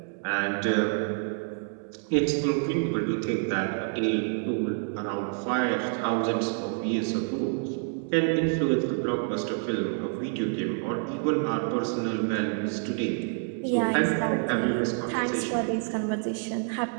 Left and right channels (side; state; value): left; silent; 59 dB below the other